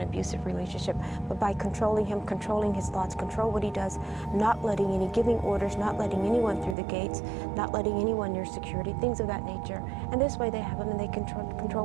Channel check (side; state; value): left; drops out; at 6.8 s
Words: abusive relationship, but by controlling him, controlling his thoughts, control what he does, not letting giving orders, not letting anyone through the gates, not letting anyone near security, things of that nature. And this way they have him and they